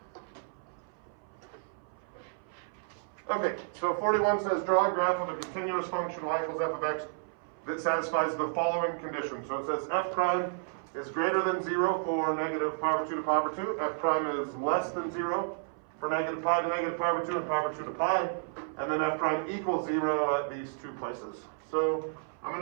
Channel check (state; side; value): silent; left; 57 dB below the other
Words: Okay, so 41 says draw a graph of a continuous function y equals f of x that satisfies the following conditions. So it says f prime is greater than 0 for negative pi over 2 to pi over 2. F prime is less than 0 for negative pi to negative pi over 2 and pi over 2 to pi. And then f prime equals 0 at these two places. So I'm